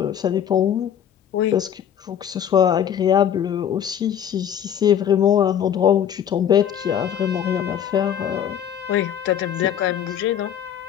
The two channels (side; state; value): right; quieter; 9.3 dB